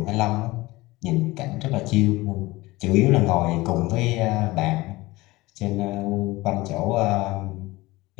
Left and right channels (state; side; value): quieter; right; 20.2 dB